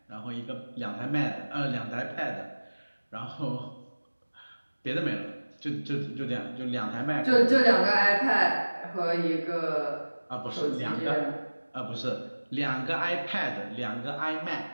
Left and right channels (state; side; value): inverted; both; correlation -1.00